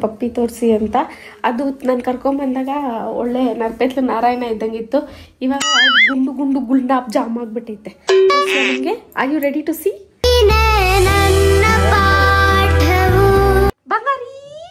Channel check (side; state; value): both; identical; correlation 1.00